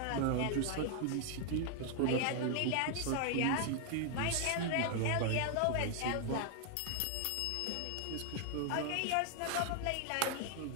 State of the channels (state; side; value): different; both; correlation 0.00